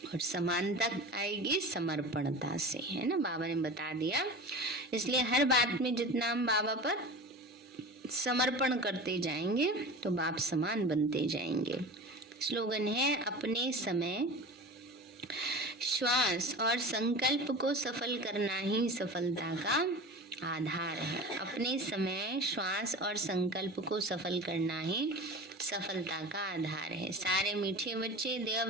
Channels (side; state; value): both; normal; correlation 0.34